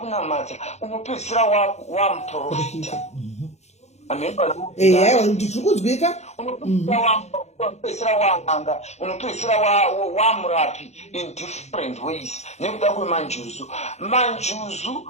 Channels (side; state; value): right; late; 0.32 ms